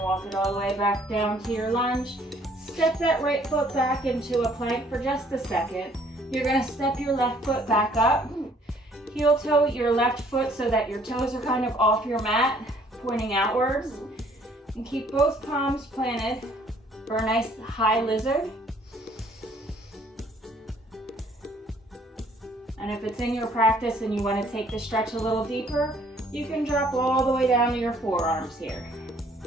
walk it all the way back down to your lunge. Step that right foot back into a plank for just a second. You're going to step your left foot back up. Heel toe your left foot so that your toes are kind of off your mat, pointing outwards. And keep both palms planted for a nice high lizard. And if it's in your practice and you want to take the stretch a little deeper, you can drop all the way down to your forearms here.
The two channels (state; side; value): normal; both; correlation 0.61